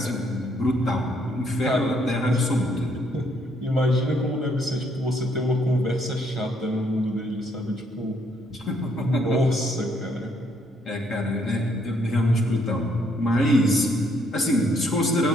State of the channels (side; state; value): both; normal; correlation 0.70